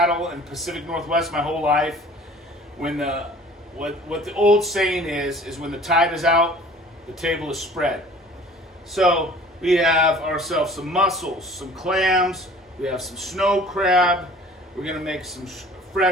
and Pacific Northwest my whole life, when what the old saying is when the tide is out, the table is spread. So we have ourselves some mussels, some clams, we have some snow crab, we're going to make some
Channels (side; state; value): both; normal; correlation 0.48